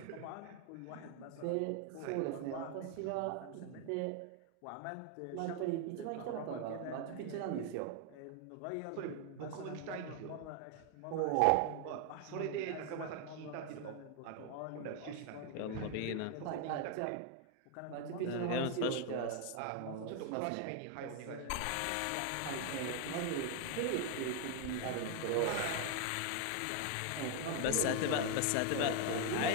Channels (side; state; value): both; different; correlation 0.00